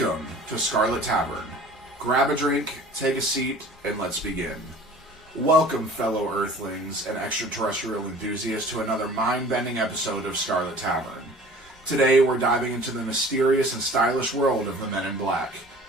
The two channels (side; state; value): both; normal; correlation 0.46